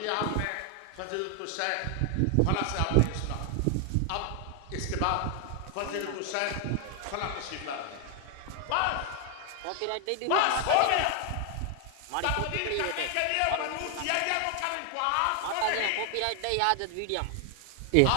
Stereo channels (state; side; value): different; both; correlation 0.00